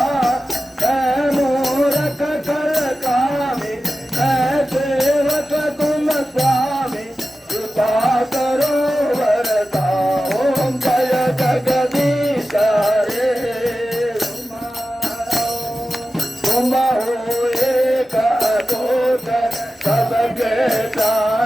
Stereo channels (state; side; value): normal; both; correlation 0.94